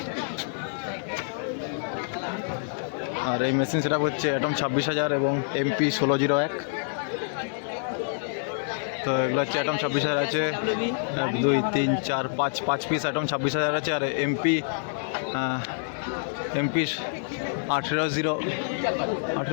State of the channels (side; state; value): right; silent; 56 dB below the other